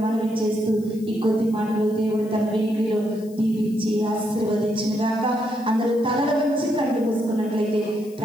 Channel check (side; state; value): left; noise; hiss, 25 dB below the sound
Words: మనవి చేస్తూ ఈ కొద్ది మాటలు దేవుడు తన వెలుగులో దీవించి ఆశీర్వదించిన గాక. అందరూ తలల నుంచి కళ్ళు మూసుకున్నట్లయితే